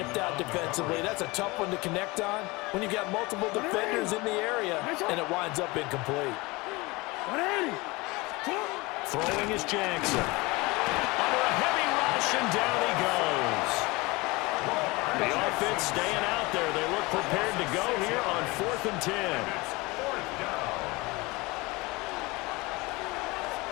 out defensively. That's a tough one to connect on when you've got multiple defenders in the area, and it winds up incomplete. Throwing is Jackson. Under a heavy rush, and down he goes. The offense staying out there. They look prepared to go here on 4th and 10.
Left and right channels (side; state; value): right; quieter; 23.7 dB